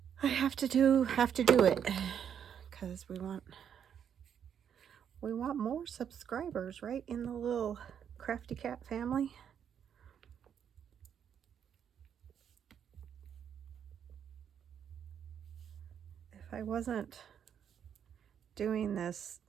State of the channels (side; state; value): left; quieter; 8.4 dB